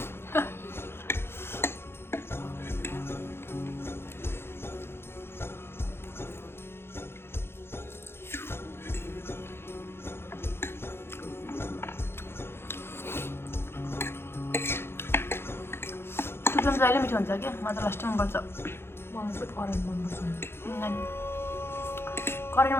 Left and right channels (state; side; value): late; right; 0.11 ms